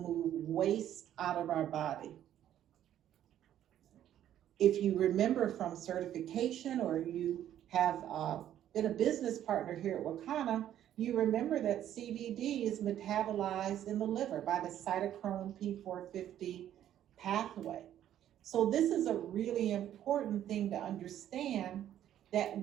waste out of our body. If you remember from certification, or you have been a business partner here at Wakana, you remember that CBD is metabolized in the liver by the cytochrome P450 pathway. So this is a really important thing to understand, that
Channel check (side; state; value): left; quieter; 11.3 dB